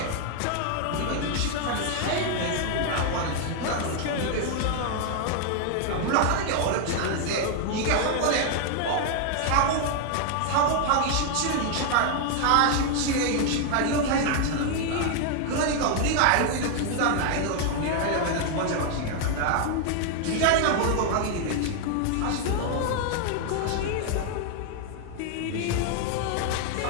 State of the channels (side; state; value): both; different; correlation 0.00